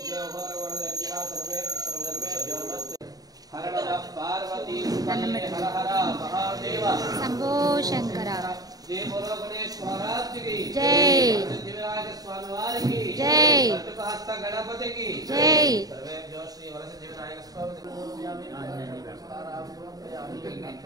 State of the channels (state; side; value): late; left; 0.18 ms